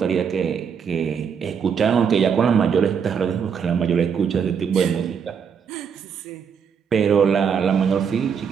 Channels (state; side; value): quieter; left; 7.0 dB